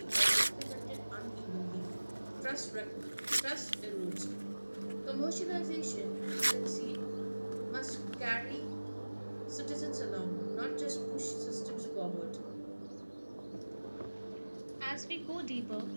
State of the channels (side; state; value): both; inverted; correlation -1.00